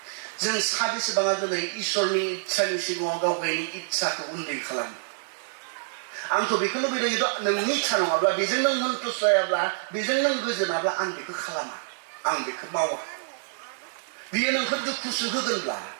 जों साबेसेबाङा दिनै इसोरनि इच्छानि सिगाङाव गाव गावनि इच्छाखौ उन्दै खालामो आंथ' बेखौ लुबैदों खिन्थु नोंनि इच्छा नङाब्ला बेजों नों सन्तुष्ट जायाब्ला बेजों नों गोजोनाब्ला आं बेखौ खालामा आं बेखौ मावा बियो नोंखौ दुखुसो होगोनब्ला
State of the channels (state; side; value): silent; left; digital silence